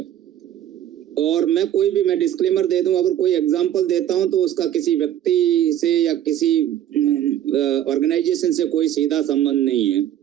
और मैं डिस्क्लेमर दे दूं, अगर कोई एग्जांपल देता हूं तो उसका किसी व्यक्ति से या किसी ऑर्गेनाइजेशन से कोई सीधा संबंध नहीं है।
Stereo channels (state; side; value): quieter; left; 11.3 dB